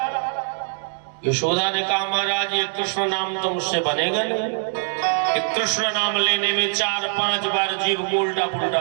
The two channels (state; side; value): silent; left; digital silence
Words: यशोदा ने कहा महाराज ये कृष्ण नाम तो मुझसे बनेगा नहीं। कृष्ण नाम लेने में 4-5 बार जीव को उल्टा पुल्टा